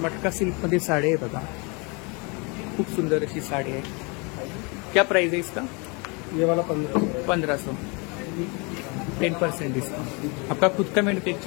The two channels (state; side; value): quieter; right; 30.8 dB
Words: मटका सिल्कमध्ये साडी आहे बघा. खूप सुंदर अशी साडी आहे. क्या प्राइस है इसका? ये वाला 1500. 1500. 10% डिस्काउंट. आपका खुद का